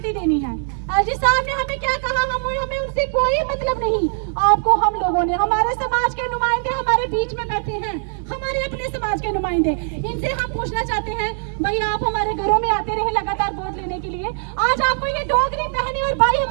देनी है। एलजी साहब ने हमें क्या कहा, हमें उनसे कोई मतलब नहीं। आपको हम लोगों ने, हमारे समाज के नुमाइंदे हमारे बीच में बैठे हैं, हमारे अपने समाज के नुमाइंदे, इनसे हम पूछना चाहते हैं, भाई आप हमारे घरों में आते रहे लगातार वोट लेने के लिए, आज आपको ये डोगरी बहनें और भाई,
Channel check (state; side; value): silent; left; 65 dB below the other